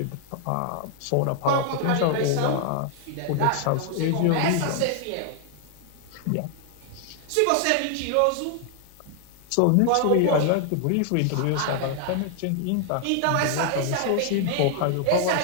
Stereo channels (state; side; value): different; both; correlation 0.00